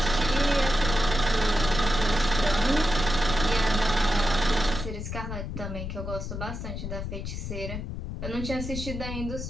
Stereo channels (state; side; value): noise; left; rumble, 6 dB below the sound